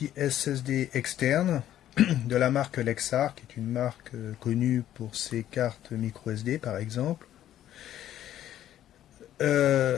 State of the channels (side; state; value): right; quieter; 12.0 dB